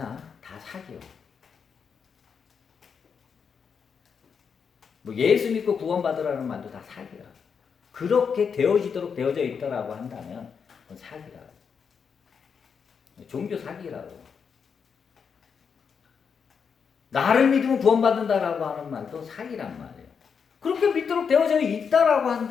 다 사기요. 뭐 예수 믿고 구원받으라는 말도 다 사기야. 그렇게 되어지도록 되어져 있다라고 한다면 그건 사기라. 종교 사기라고. 나를 믿으면 구원받는다라고 하는 말도 사기란 말이에요. 그렇게 믿도록 되어져 있다라고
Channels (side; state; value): right; quieter; 6.4 dB